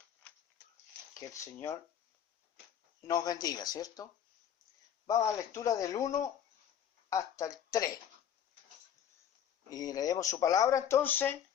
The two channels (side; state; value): right; quieter; 9.2 dB